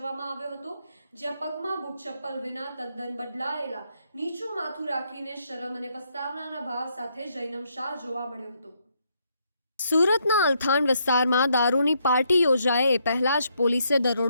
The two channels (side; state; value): both; inverted; correlation -0.74